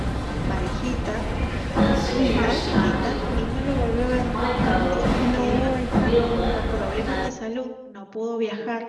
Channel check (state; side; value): identical; both; correlation 1.00